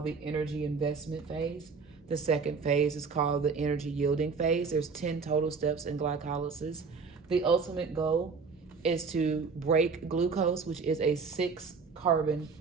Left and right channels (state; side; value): quieter; left; 5.0 dB